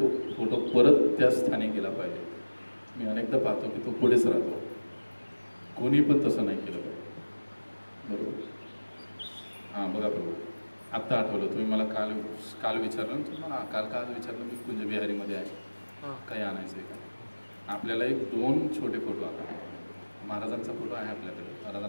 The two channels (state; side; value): inverted; both; correlation -1.00